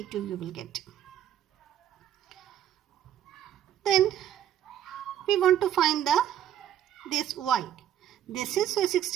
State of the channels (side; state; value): left; quieter; 10.9 dB